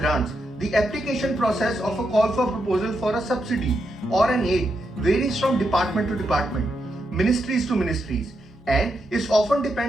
the application process of a call for proposal for a subsidy or an aid varies from department to department, ministries to ministries, and it often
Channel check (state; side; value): normal; both; correlation 0.83